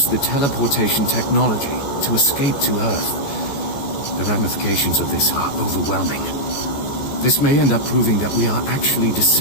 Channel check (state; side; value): late; right; 14 ms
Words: the teleportation technology to escape to Earth. The ramifications of this are overwhelming. This may end up proving that we are actually